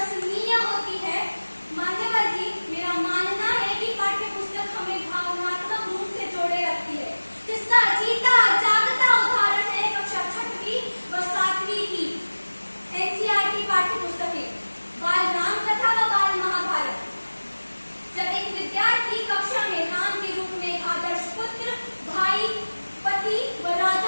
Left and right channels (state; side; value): inverted; both; correlation -1.00